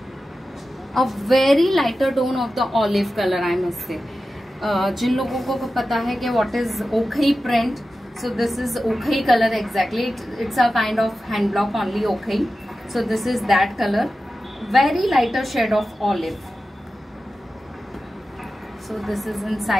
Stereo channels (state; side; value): normal; both; correlation 0.93